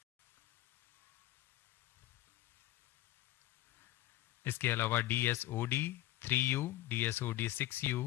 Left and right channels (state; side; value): quieter; right; 15.6 dB